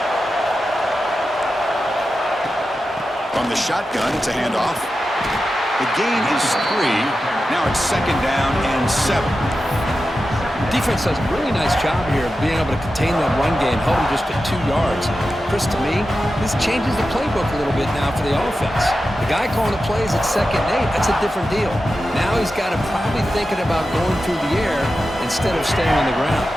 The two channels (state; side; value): normal; both; correlation 0.92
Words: From the shotgun, it's a handoff. The gain is 3. Now it's 2nd down and 7. Defense does a really nice job here of being able to contain that run game, held him just at 2 yards. Chris, to me, this changes the playbook a little bit now for the offense. The guy calling the plays at 2nd and 8, that's a different deal. Now he's got to probably thinking about going through the air instead of staying on the ground.